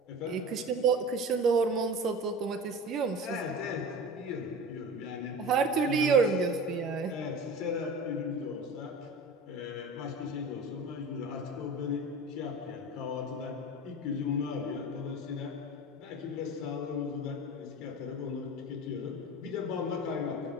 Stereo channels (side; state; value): both; normal; correlation 0.33